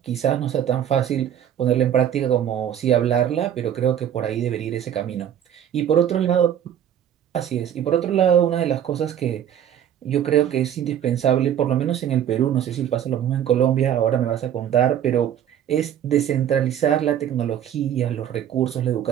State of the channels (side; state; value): left; quieter; 9.9 dB